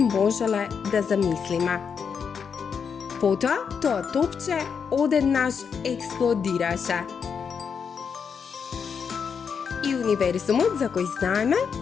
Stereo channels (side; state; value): right; quieter; 6.5 dB